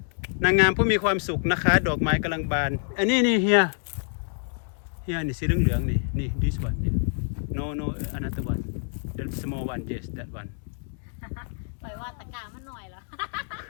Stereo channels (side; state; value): right; silent; 60 dB below the other